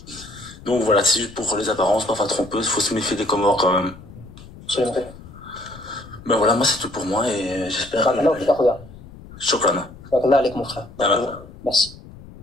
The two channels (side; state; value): left; noise; rumble, 18 dB below the sound